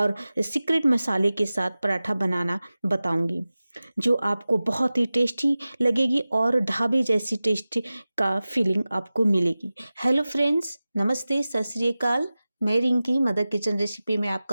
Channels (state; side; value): inverted; both; correlation -0.96